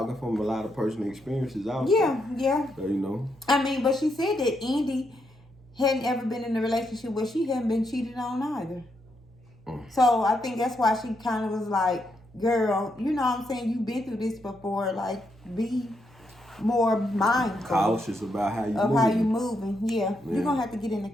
from a lot of personal experiences also. Yeah. So, I mean, but she said that Indy hadn't ever been in a relationship where she hadn't been cheated on either. So I think that's why she kind of was like, girl, you know what I'm saying? You've been through this before. Like, be more mindful. Cautious about how you moving. How you moving. Yeah. You're going to have to get in the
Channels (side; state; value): right; noise; hum, 25 dB below the sound